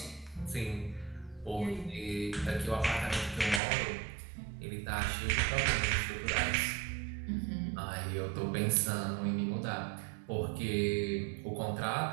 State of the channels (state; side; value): drops out; left; at 3.6 s